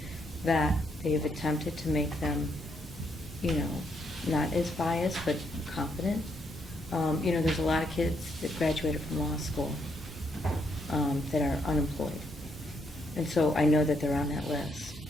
that they have attempted to make them, not as biased, but competent. There's a lot of kids that graduated from law school that are unemployed. And so I know that they're on that list.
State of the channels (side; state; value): both; normal; correlation 0.76